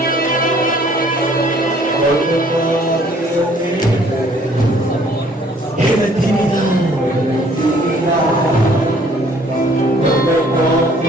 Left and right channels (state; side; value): normal; both; correlation 0.59